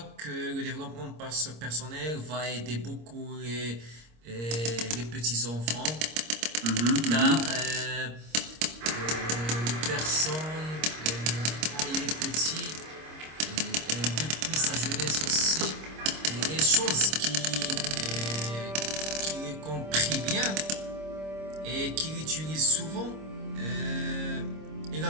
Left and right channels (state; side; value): late; left; 26 ms